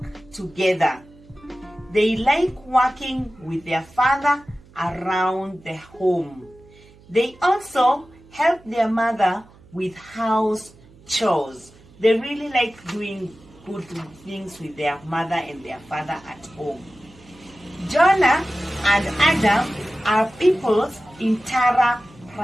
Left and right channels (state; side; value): noise; right; hum, 25 dB below the sound